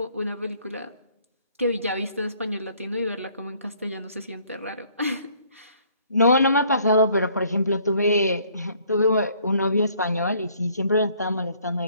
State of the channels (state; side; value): inverted; both; correlation -0.61